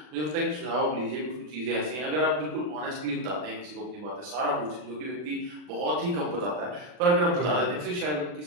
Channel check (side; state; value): left; late; 40 ms